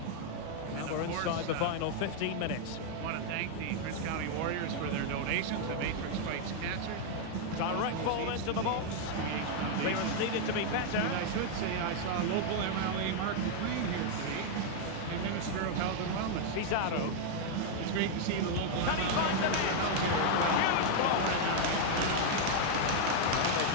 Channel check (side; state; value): both; different; correlation 0.00